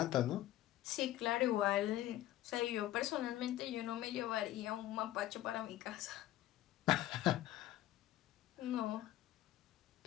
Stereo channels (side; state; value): right; quieter; 14.1 dB